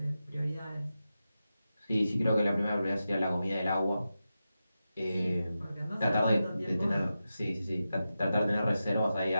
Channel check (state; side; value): inverted; both; correlation -0.91